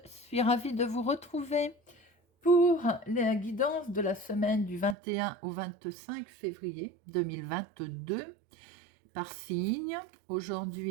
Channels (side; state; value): left; drops out; at 5.0 s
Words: suis ravie de vous retrouver pour la guidance de la semaine du 21 au 25 février 2022 par signe.